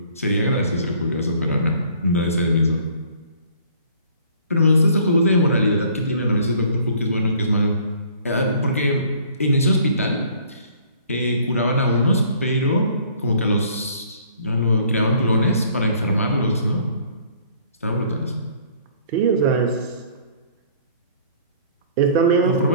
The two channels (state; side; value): inverted; both; correlation -0.56